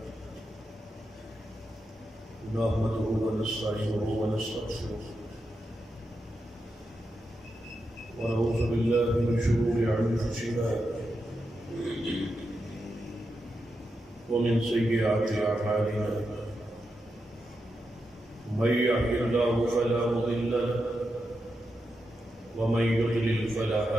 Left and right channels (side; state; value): both; normal; correlation 0.86